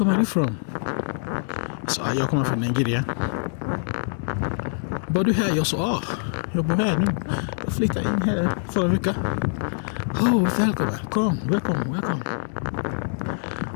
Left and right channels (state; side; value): silent; right; digital silence